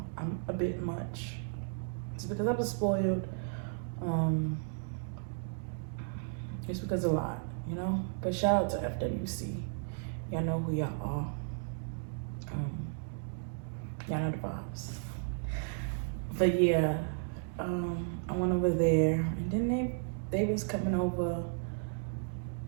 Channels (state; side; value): silent; left; digital silence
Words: a bit much. It's because I was spoiled. It's because of a lot, you know? But shout out to FWC. Y'all know who y'all are. Y'all know the vibes. But yeah, I went over there, and then they was coming over.